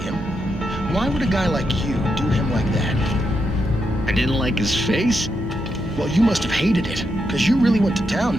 him. Why would a guy like you do him like that? I didn't like his face? Well, you must have hated it, because you really went to town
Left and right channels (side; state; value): both; normal; correlation 0.83